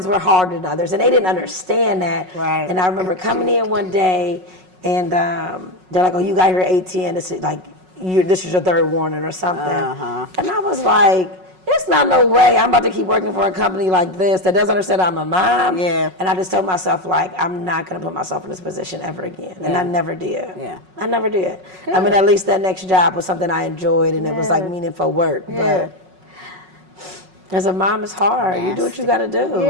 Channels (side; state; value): left; late; 5.4 ms